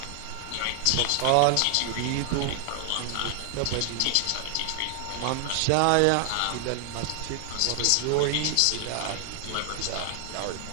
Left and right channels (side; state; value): both; different; correlation 0.00